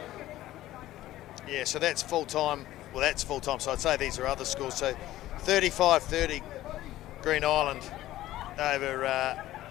Yeah, so that's full time. Well, that's full time. So I'd say these are other scores. So 35-30, Green Island over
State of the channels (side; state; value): right; quieter; 15.0 dB